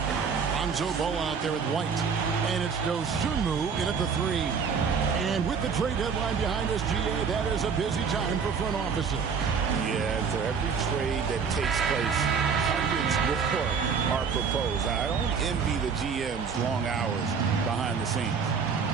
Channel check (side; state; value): left; quieter; 6.0 dB